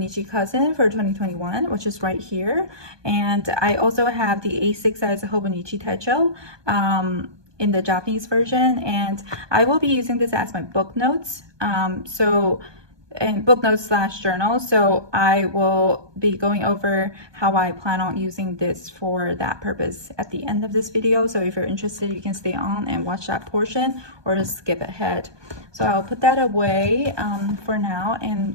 Cousin for 2021, which is right here. And I also have the A6 size Hobonichi Techo in the Japanese version, and I will be using this as my book notes. And book notes slash journal. So I will be going over how I plan on using this for that purpose at the end of this video. So if you're interested, you can stay on and watch that portion or just skip ahead. So I'll put that away for now, and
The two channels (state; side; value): late; left; 1.2 ms